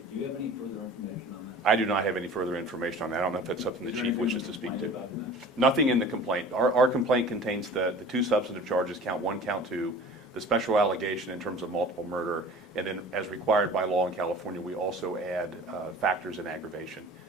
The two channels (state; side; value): normal; both; correlation 0.43